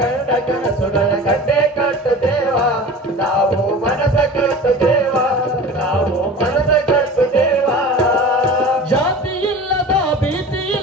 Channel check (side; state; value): both; normal; correlation 0.36